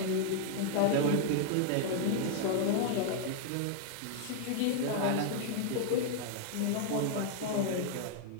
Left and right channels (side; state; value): both; different; correlation 0.00